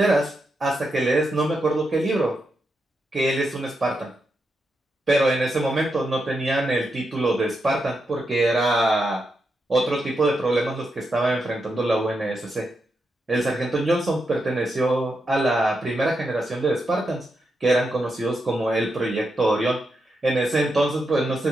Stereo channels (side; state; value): both; normal; correlation 0.85